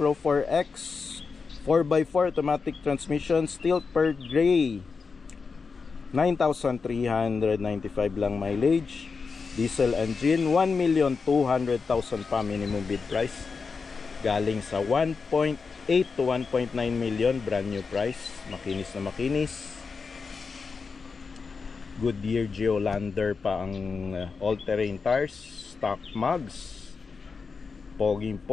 4X 4x4 automatic transmission, steel pearl gray. 9,395 lang mileage. Diesel engine, 1,200,000 pa minimum bid price. Galing sa 1.8 to 1.9 million brand new price. Makinis na makinis. Goodyear Geolander pa ang all-terrain tires. Stock mugs.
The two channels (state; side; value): quieter; right; 4.9 dB